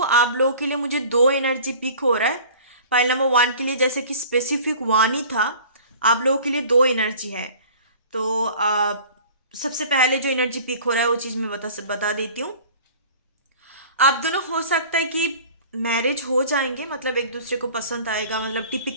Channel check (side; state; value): both; inverted; correlation -0.45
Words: आप लोगों के लिए मुझे 2 एनर्जी पिक हो रहा है। पाइल नंबर 1 के लिए जैसे कि स्पेसिफिक 1 ही था, आप लोगों के लिए 2 एनर्जी है। तो सबसे पहले जो एनर्जी पिक हो रहा है वो चीज़ मैं बता देती हूँ। आप दोनों हो सकता है कि मैरिज हो जाएंगे, मतलब एक दूसरे को पसंद आएगा, मतलब